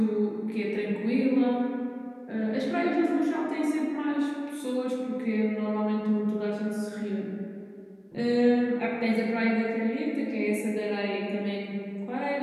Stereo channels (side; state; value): both; identical; correlation 1.00